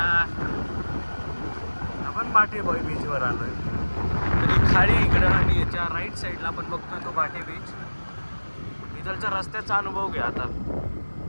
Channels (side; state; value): both; inverted; correlation -1.00